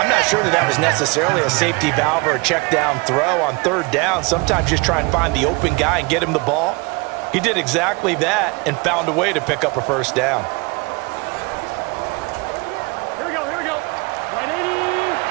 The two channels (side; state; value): left; quieter; 27.5 dB